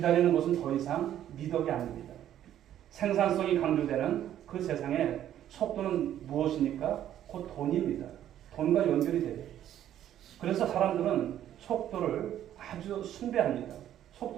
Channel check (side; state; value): left; quieter; 11.3 dB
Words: 것은 더 이상 미덕이 아닙니다. 생산성이 강조되는 그 세상에 속도는 무엇입니까? 곧 돈입니다. 돈과 연결이 돼요. 그래서 사람들은 속도를 아주 숭배합니다.